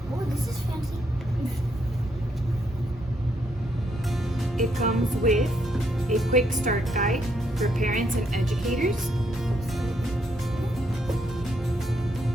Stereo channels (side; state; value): both; normal; correlation 0.75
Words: Oh, this is fancy. It comes with a quick start guide for parents and educators.